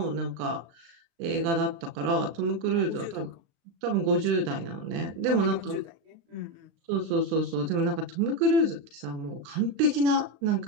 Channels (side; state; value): left; late; 35 ms